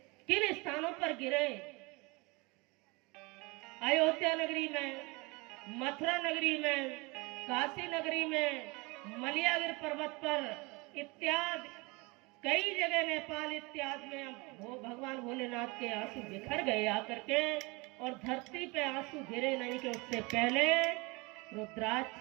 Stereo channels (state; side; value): quieter; left; 26.4 dB